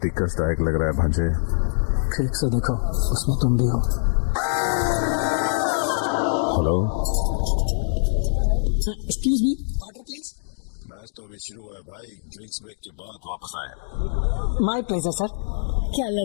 ही कष्टदायक लग रहा है भांजे। ठीक से देखो, उसमें तुम भी हो। Hello, excuse me, water please. Match तो अभी शुरू हुआ है भाई। ड्रिंक्स ब्रेक के बाद वापस आए। My pleasure sir. क्या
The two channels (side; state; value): right; silent; digital silence